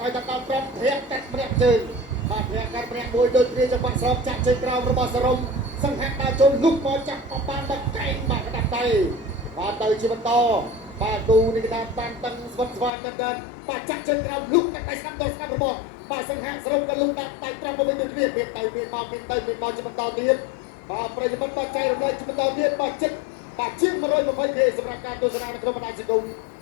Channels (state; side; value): drops out; right; at 12.9 s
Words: ឲ្យដល់5ធាក់កាត់ម្នាក់ជើងបាទធាក់កាត់ម្នាក់មួយដូចគ្នាចង្វាក់ស្របចាក់ជើងក្រោមរបស់សរំសង្ហៈដើរចូលលុកមកចាក់បបានដល់កែងបាទកដាប់ដៃបាទទៅជាបន្តបាទគូនេះគេថាបានតឹងស្វិតស្វាយតែបាទចាក់ជើងក្រោមលុកតែដៃស្ដាប់ដល់ស្ដាប់របស់បាទសង្ហៈសរុបក៏លុបដាក់ដៃត្រង់មកវិញដូចគ្នាមានទៅមានមកមានទៅមានមកជាបន្តទៀតបាទប្រិយមិត្តបាទចៃរំលែកជាបន្តទៀតបាទចិត្តបាទជាង120គេសម្រាប់ការទស្សនានៅក្នុងបណ្ដាញសង្គម